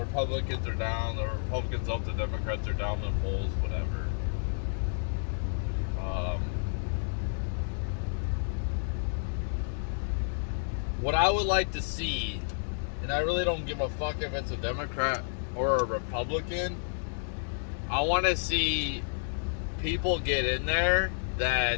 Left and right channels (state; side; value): silent; right; digital silence